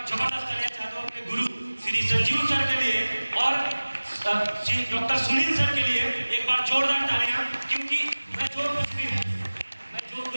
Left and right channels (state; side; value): inverted; both; correlation -1.00